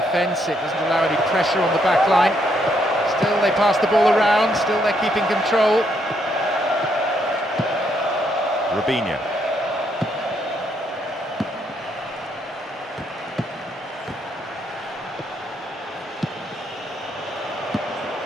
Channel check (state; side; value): normal; both; correlation 0.74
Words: It doesn't allow any pressure on the back line. Still they pass the ball around, still they're keeping control. Robinho.